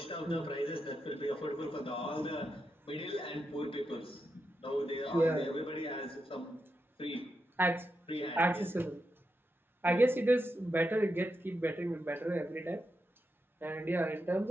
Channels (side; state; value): both; normal; correlation 0.85